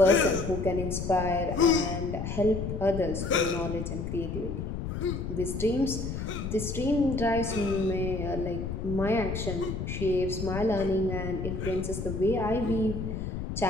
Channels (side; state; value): left; noise; rumble, 4 dB below the sound